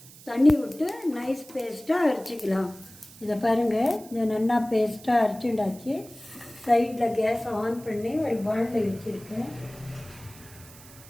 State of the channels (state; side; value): noise; right; hiss, 20 dB below the sound